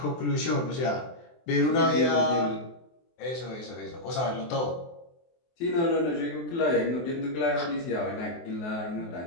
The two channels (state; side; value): late; right; 24 ms